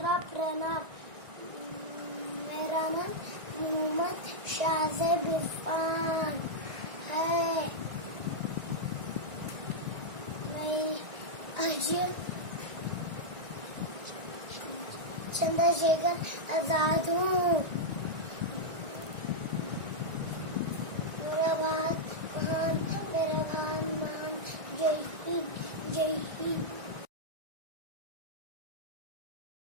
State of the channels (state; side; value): late; left; 1.9 ms